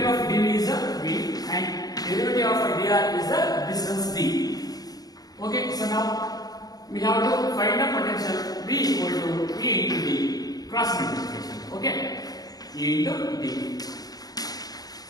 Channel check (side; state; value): right; late; 0.18 ms